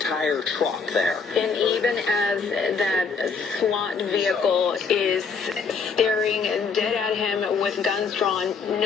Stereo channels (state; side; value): quieter; right; 5.2 dB